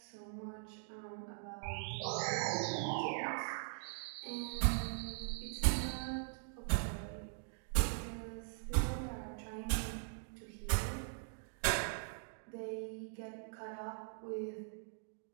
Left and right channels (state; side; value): silent; left; digital silence